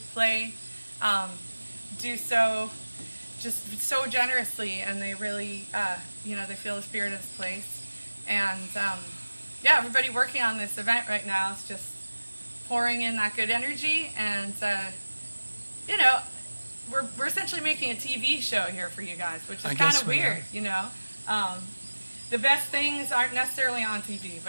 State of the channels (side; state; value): both; inverted; correlation -1.00